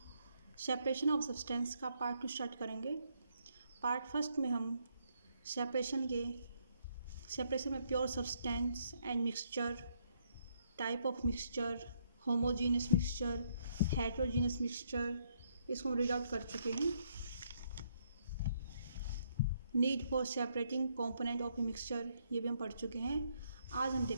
सेपरेशन ऑफ सब्सटेंस का पार्ट 2 स्टार्ट करेंगे। पार्ट फर्स्ट में हम सेपरेशन में pure substance and mixture, type of mixture, homogeneous mixture, heterogeneous mixture, इसको हम रीड आउट कर चुके हैं। Need for separating component of a mixture, ये भी हम पढ़ चुके हैं। आज हम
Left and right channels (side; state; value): both; inverted; correlation -0.73